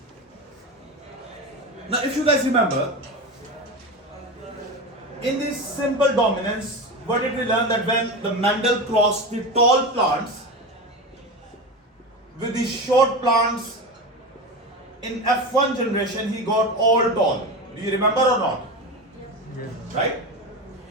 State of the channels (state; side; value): normal; both; correlation 0.23